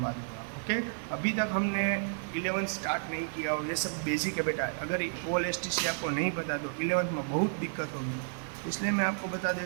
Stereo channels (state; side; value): silent; left; digital silence